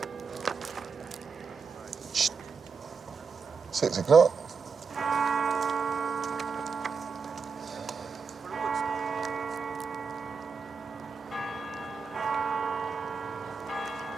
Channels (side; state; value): left; quieter; 5.3 dB